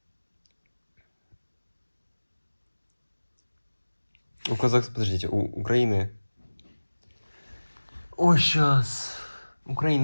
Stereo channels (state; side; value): inverted; both; correlation -1.00